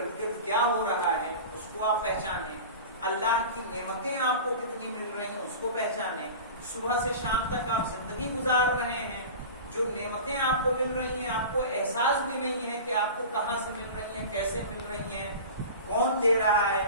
گرد کیا ہو رہا ہے اس کو آپ پہچانیں، اللہ کی نعمتیں آپ کو کتنی مل رہی ہیں اس کو پہچانیں. صبح سے شام تک آپ زندگی گزار رہے ہیں، جو نعمتیں آپ کو مل رہی ہیں آپ کو احساس بھی نہیں ہے کہ آپ کو کہاں سے مل رہی ہیں، کیسے مل رہی ہیں، کون دے رہا ہے،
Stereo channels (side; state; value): both; inverted; correlation -0.34